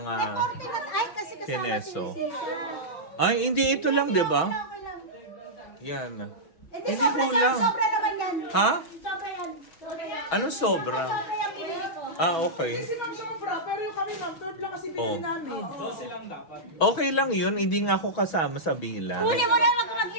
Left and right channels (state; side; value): late; right; 6.2 ms